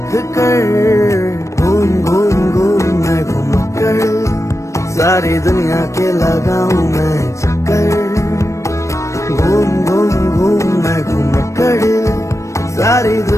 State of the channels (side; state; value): right; late; 0.15 ms